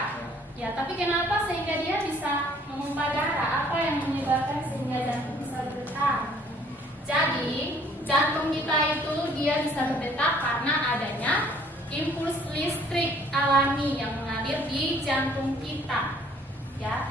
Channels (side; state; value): both; normal; correlation 0.59